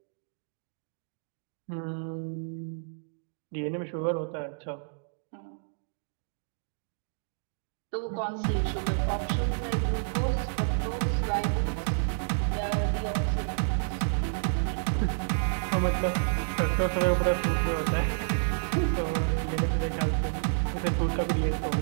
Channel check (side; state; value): left; silent; digital silence